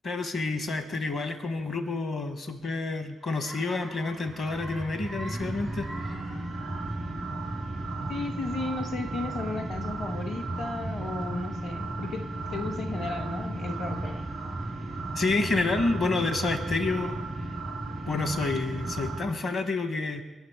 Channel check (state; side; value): normal; both; correlation 0.81